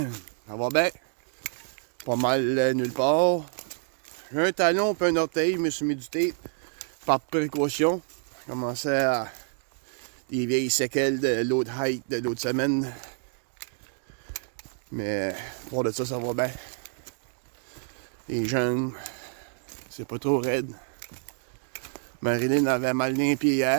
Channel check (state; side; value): silent; left; 59 dB below the other